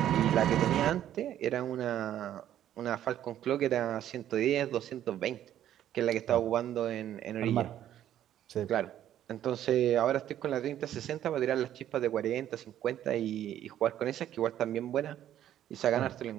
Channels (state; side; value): quieter; left; 11.5 dB